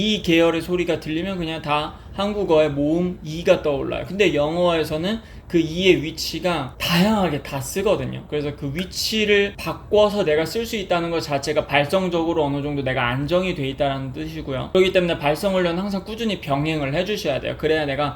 계열의 소리가 들리면 그냥 다 한국어의 모음 이가 떠올라요. 근데 영어에서는 그 이의 위치가 다양하게 다 쓰거든요. 그래서 그 위치를 바꿔서 내가 쓸 수 있다는 것 자체가 발성적으로 어느 정도 내가 안정이 돼 있다는 뜻이고요. 그렇기 때문에 발성 훈련은 항상 꾸준히 병행을 해주셔야 돼요. 그래야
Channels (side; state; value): both; identical; correlation 1.00